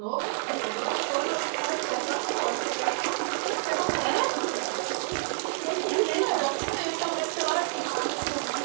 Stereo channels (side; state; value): left; silent; digital silence